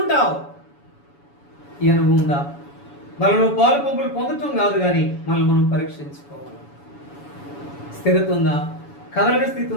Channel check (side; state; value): right; late; 7.1 ms